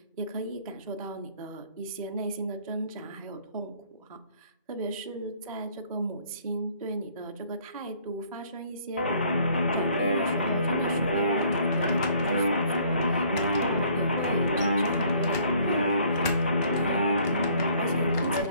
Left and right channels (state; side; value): inverted; both; correlation -0.60